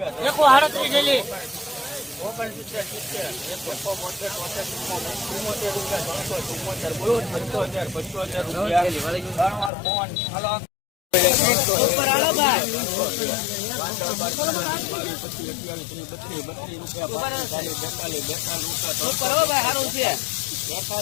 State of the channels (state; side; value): drops out; right; at 9.7 s